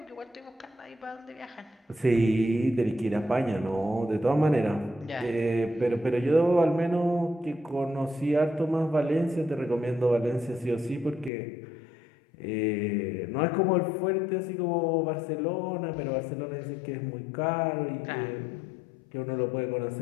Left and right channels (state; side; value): drops out; right; at 11.3 s